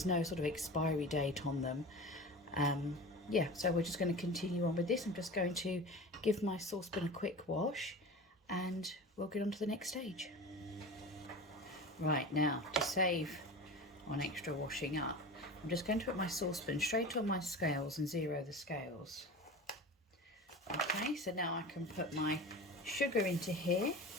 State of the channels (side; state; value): both; normal; correlation 0.32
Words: no sort of expiry date on them. Yeah, so we're just going to continue on with this. I'm just going to give my saucepan a quick wash, and we'll get on to the next stage. Right, now to save on extra washing up, I'm just going to put my saucepan straight on my scales and zero the scales. Okay, so now I can put my sugar into here.